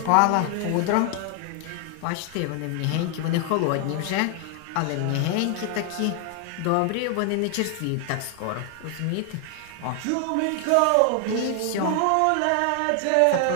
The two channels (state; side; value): different; both; correlation 0.00